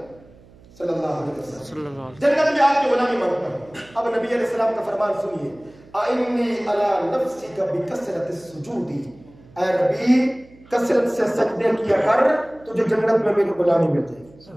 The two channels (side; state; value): right; noise; hum, 25 dB below the sound